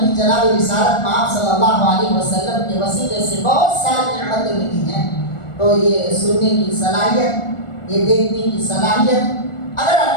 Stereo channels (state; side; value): late; right; 1.4 ms